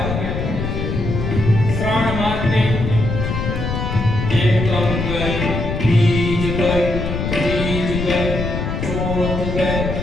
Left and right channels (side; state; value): left; noise; rumble, 3 dB below the sound